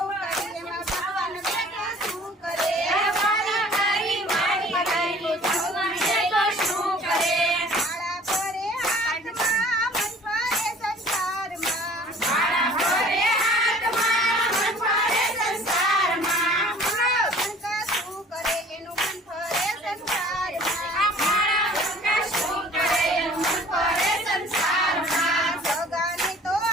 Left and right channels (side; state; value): both; normal; correlation 0.50